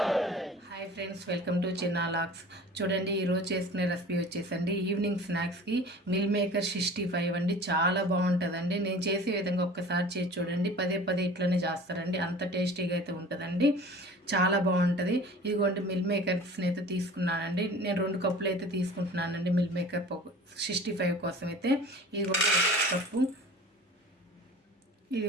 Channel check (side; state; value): both; normal; correlation 0.42